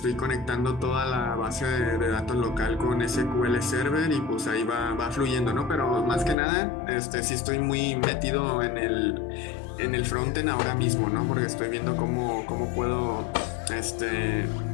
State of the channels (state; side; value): drops out; right; at 6.4 s